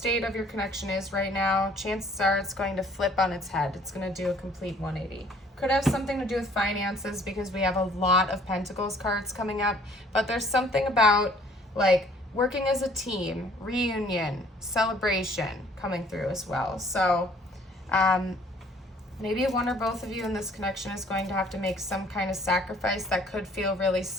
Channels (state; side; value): normal; both; correlation 0.57